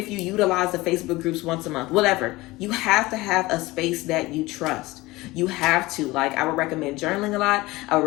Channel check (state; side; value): quieter; right; 20.2 dB